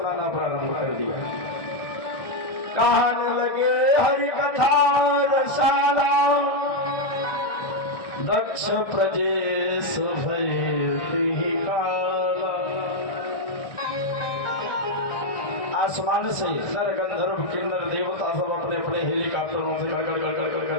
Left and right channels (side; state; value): right; late; 1.6 ms